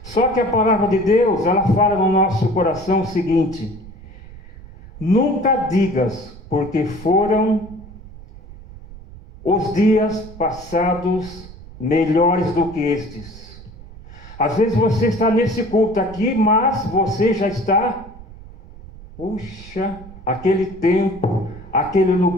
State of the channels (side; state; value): right; noise; rumble, 17 dB below the sound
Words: Só que a palavra de Deus, ela fala no nosso coração o seguinte: nunca digas, porque foram os dias passados melhores do que estes. Às vezes você está nesse culto aqui, mas você já está, puxa, aquele tempo, aquele